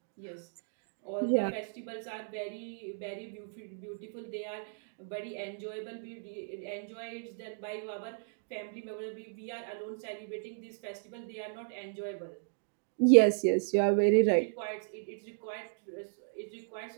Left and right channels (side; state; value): left; silent; digital silence